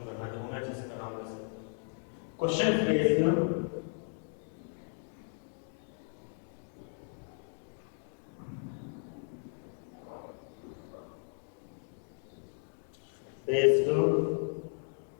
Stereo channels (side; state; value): right; silent; 54 dB below the other